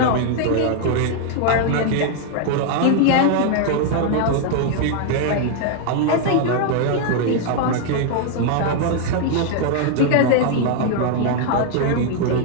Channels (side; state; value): both; different; correlation 0.00